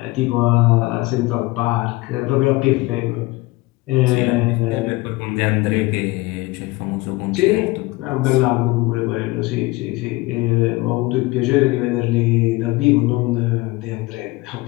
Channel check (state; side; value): quieter; right; 21.3 dB